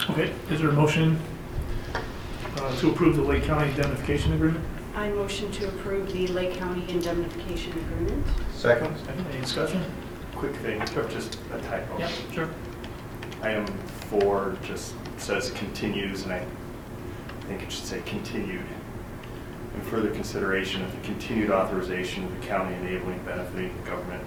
But. Okay, is there a motion to approve the Lake County indemnification agreement? I motion to approve the Lake County indemnification agreement. Second. Any discussion? Quick thing, just a typo. Yeah, sure. Item 4 just says continues, and I think it should say continued. In further consideration of the continued authorization of the county enabling benefiting government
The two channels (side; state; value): both; identical; correlation 1.00